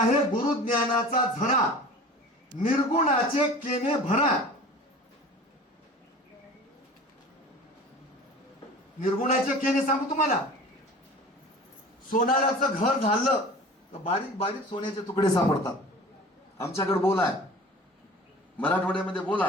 गुरुज्ञानाचा झरा, निर्गुणाचे केने भरा. निर्गुणाचे केने सांगू तुम्हाला, सोनाराचं घर झालं तर बारीक बारीक सोन्याचे तुकडे सापडतात. आमच्याकडे बोल आहे, मराठवाड्यामध्ये बोल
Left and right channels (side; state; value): both; normal; correlation 0.40